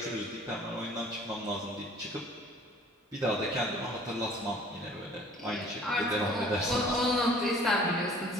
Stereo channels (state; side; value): normal; both; correlation 0.52